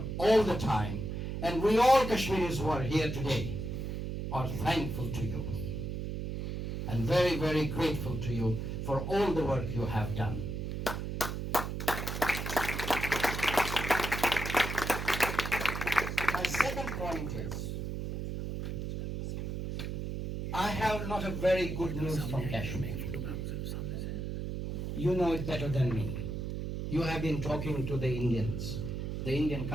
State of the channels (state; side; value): noise; right; hum, 4 dB below the sound